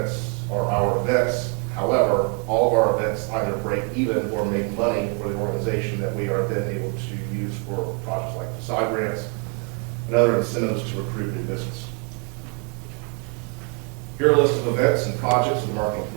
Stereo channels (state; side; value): quieter; left; 34.6 dB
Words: are our events. However, all of our events either break even or make money for the organization that we are then able to use for projects like facade grants and other incentives to recruit new business. Here are a list of events and projects of the Marketing and